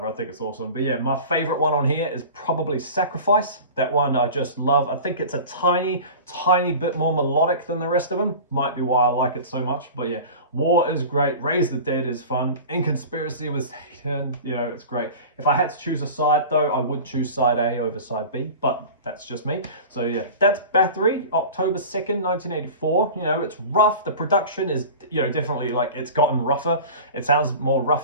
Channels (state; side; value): inverted; both; correlation -0.36